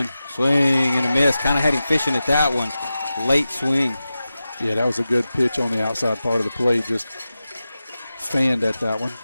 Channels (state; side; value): inverted; both; correlation -0.93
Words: Swing and a miss. Kind of had him fishing at that one. Late swing. Yeah, that was a good pitch on the outside part of the plate. Just fanned at that one.